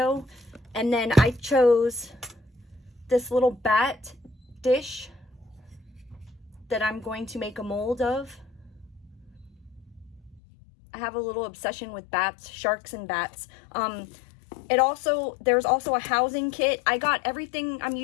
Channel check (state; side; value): drops out; right; at 10.4 s